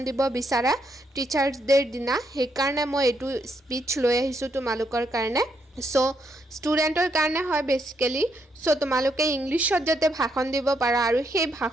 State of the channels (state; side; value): normal; both; correlation 0.76